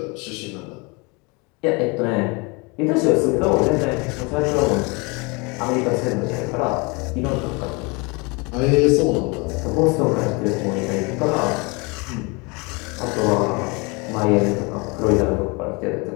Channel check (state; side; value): quieter; right; 28.7 dB